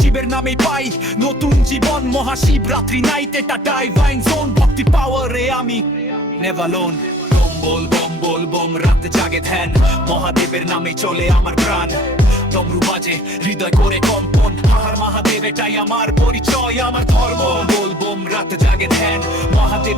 নামে পাই নতুন জীবন মহাশিবরাত্রি নাইট এটা ডাইভাইন জোন ভক্তি পাওয়ারে আমি নেভার লোন बोलबम बोलबम রাতে জাগে ধ্যান মহাদেবের নামে চলে আমার প্রাণ ডমরু বাজে হৃদয় করে কম্পন হার মহাদেব এটাই আমার পরিচয় আমার ধর্ম बोलबम রাতে জাগে ধ্যান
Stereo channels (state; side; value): normal; both; correlation 0.53